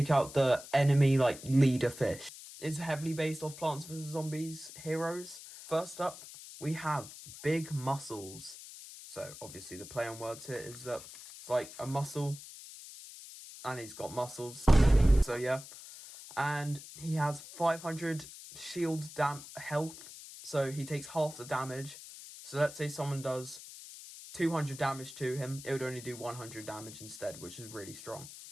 out the enemy leader fish. It's heavily based off Plants vs Zombies heroes. First up, we have big mussels. So obviously the play on words here is that it's like a mussel and he's got muscles, so yeah. And he has 500 shield health, so he takes half the damage. So let's say someone does 200 damage to him, it would only do 100 damage instead, which is really strong.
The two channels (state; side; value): noise; left; hiss, 14 dB below the sound